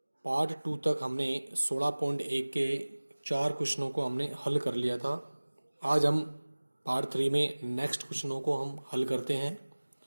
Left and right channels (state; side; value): inverted; both; correlation -1.00